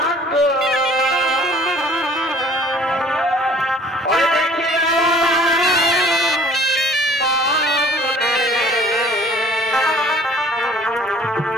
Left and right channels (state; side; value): normal; both; correlation 0.52